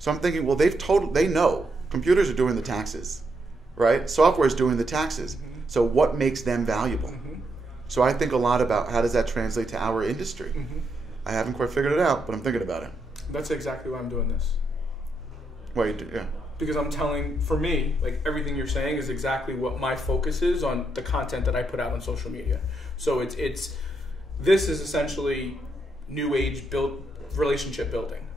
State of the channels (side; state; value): both; normal; correlation 0.80